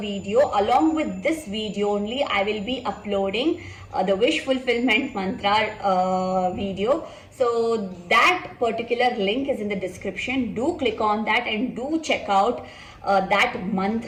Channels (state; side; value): identical; both; correlation 1.00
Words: Along with this video only, I will be uploading the wish fulfillment mantra video. So that particular link is in the description. Do click on that and do check out that